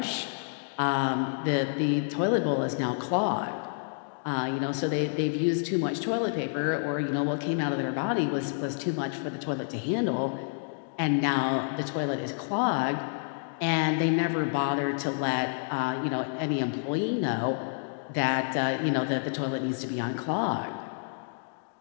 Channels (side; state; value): right; silent; digital silence